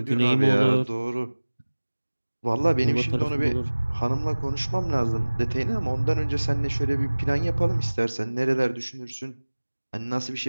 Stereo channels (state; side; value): inverted; both; correlation -1.00